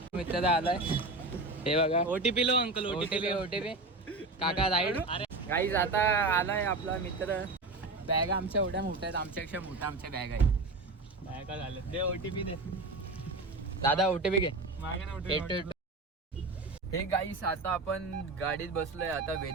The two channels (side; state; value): left; quieter; 3.2 dB